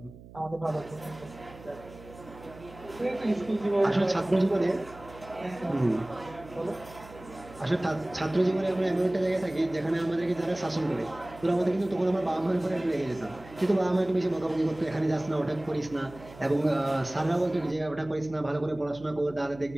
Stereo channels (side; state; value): right; noise; hum, 19 dB below the sound